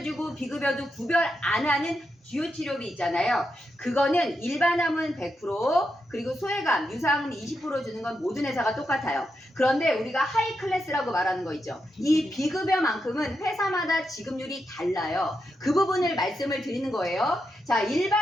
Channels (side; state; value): both; normal; correlation 0.85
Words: 주고 비급여도 구별 안 하는 주요 치료비 있잖아요. 그거는 일반암은 100% 그리고 소외감, 유사암은 20% 주는 건 모든 회사가 똑같아요. 그런데 우리가 하이 클래스라고 말하는 거 있죠. 이 비급여만큼은 회사마다 지급률이 달라요. 그 부분을 말씀을 드리는 거예요. 자,